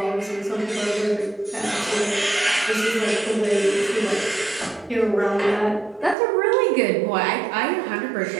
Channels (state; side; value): drops out; left; at 6.2 s